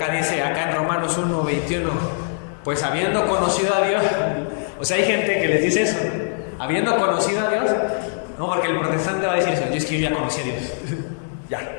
dice, acá en Romanos 1:21, pues habiendo conocido a Dios, o sea, hay gente que les dice eso, habiendo conocido a Dios, no, porque el protestante va a decir eso, yo es que yo ya conocí a Dios, ya.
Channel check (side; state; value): right; silent; digital silence